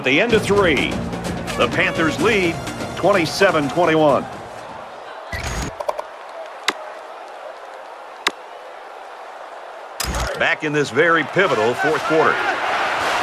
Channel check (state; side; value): identical; both; correlation 1.00